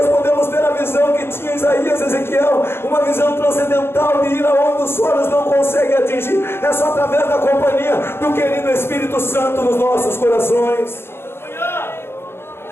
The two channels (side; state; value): right; late; 0.11 ms